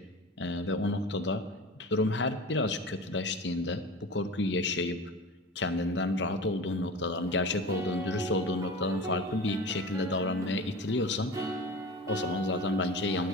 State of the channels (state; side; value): normal; both; correlation 0.34